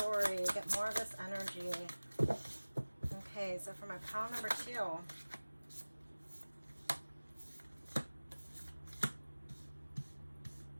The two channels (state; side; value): inverted; both; correlation -1.00